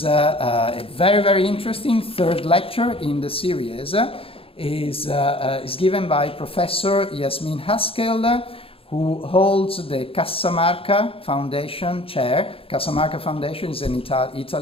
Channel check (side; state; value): right; late; 0.27 ms